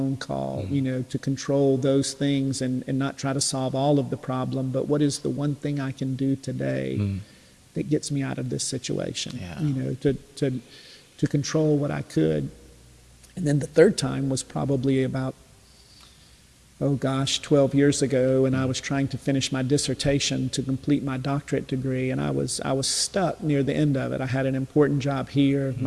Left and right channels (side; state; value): both; identical; correlation 1.00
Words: call, to control those things and not try to solve all of the problem, but what is the one thing I can do today that gets me out of this situation, to control what I could. And then the third time was probably about 12 years ago, and I was trying to finish my dissertation to complete my doctorate degree, and I was stuck near the end of it. I had an important job here,